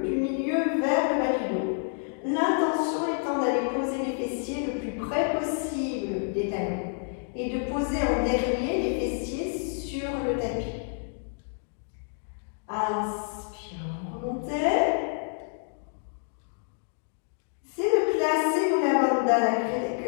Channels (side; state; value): right; silent; 59 dB below the other